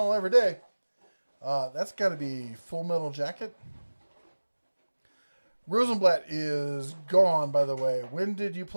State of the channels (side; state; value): both; inverted; correlation -1.00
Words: every day. That's got to be Full Metal Jacket. Rosenblatt is gone, by the way. When did you